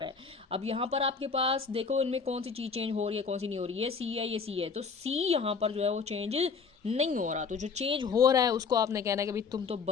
है। अब यहाँ पर आपके पास देखो इनमें कौन सी चीज़ चेंज हो रही है, कौन सी नहीं हो रही है, ये सी है, ये सी है। तो सी यहाँ पर जो है वो चेंज नहीं हो रहा। तो जो चेंज हो रहा है उसको आपने कहना है कि भाई तुम तो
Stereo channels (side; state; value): right; quieter; 5.3 dB